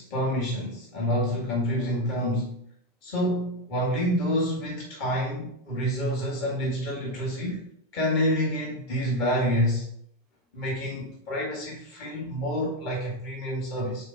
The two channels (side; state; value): both; normal; correlation 0.09